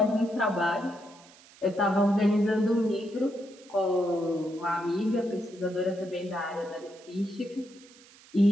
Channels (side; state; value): right; noise; hiss, 24 dB below the sound